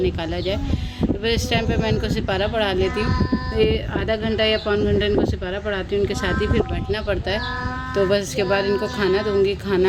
जाए। तो फिर इस टाइम पे मैं इनको सिपारा पढ़ा लेती हूँ। ये आधा घंटा या पौन घंटा इनको सिपारा पढ़ाती हूँ, उनके साथ ही फिर बैठना पड़ता है। तो बस इसके बाद इनको खाना दूँगी।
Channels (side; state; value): both; identical; correlation 1.00